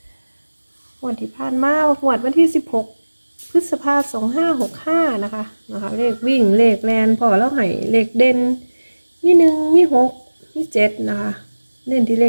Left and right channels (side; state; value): both; inverted; correlation -1.00